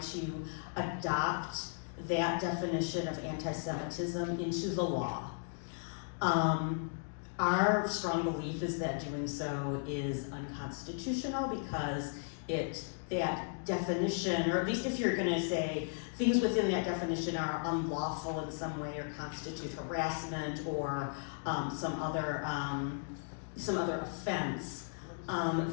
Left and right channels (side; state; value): right; silent; digital silence